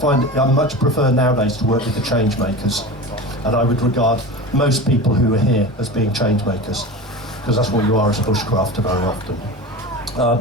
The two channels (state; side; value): normal; both; correlation 0.30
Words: I much prefer nowadays to work with the change makers, and I would regard most people who are here as being change makers, because that's what you are as a bushcrafter very often.